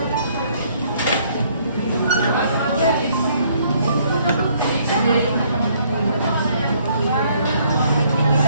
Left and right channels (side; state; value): both; inverted; correlation -0.65